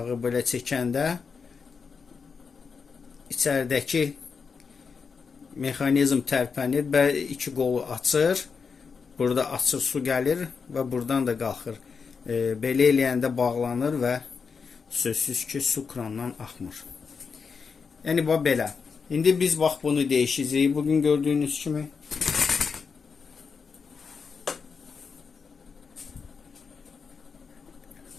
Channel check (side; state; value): right; quieter; 5.5 dB